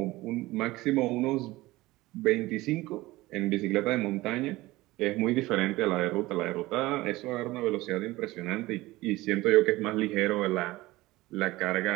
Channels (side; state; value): left; quieter; 19.0 dB